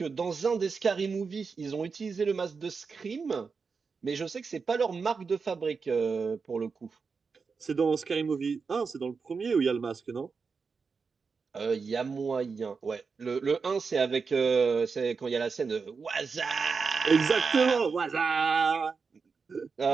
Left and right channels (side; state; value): left; quieter; 5.1 dB